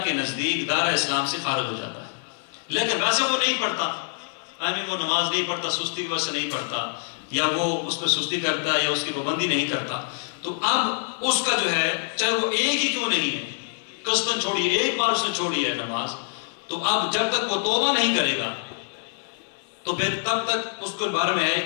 کے نزدیک دارہ اسلام سے خارج ہو جاتا ہے. لیکن ویسے وہ نہیں پڑھتا, وہ نماز نہیں پڑھتا, سستی کی وجہ سے نہیں پڑھتا, یا وہ اس پہ سستی کرتا ہے یا اس کی پابندی نہیں کرتا, تو اب اس کا جو ہے چاہے وہ ایک ہی کیوں نہیں ہے, قصداً چھوڑی, ایک بار اس نے چھوڑی ہے نماز, تو اب جب تک وہ توبہ نہیں کرے گا تو پھر تب تک اس کے بارے میں ہے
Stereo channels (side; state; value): right; silent; digital silence